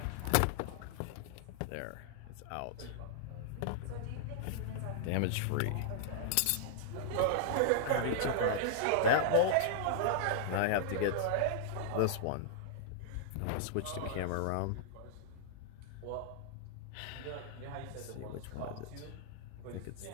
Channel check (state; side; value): different; both; correlation -0.01